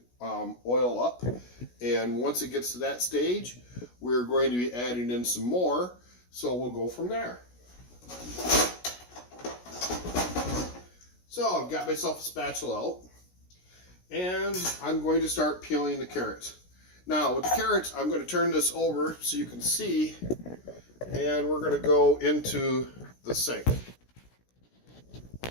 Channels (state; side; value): late; right; 16 ms